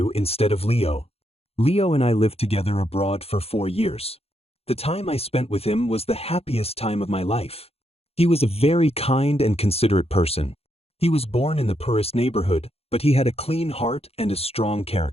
instead of Leo. Leo and I lived together abroad for 4 years. The time I spent with him was the happiest time of my life. He was a very kind and considerate person. He was born in the poorest neighborhood, but he had a clean heart and a strong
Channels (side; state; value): right; late; 0.29 ms